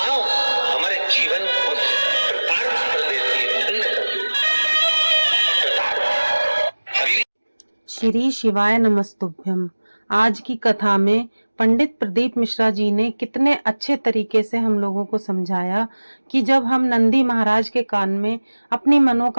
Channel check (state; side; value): inverted; both; correlation -1.00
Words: हमारे जीवन को कृतार्थ कर देती है, धन्य कर देती है। श्री शिवाय नमस्तुभ्यम। आज की कथा में पंडित प्रदीप मिश्रा जी ने कितने अच्छे तरीके से हम लोगों को समझाया कि जब हम नंदी महाराज के कान में अपनी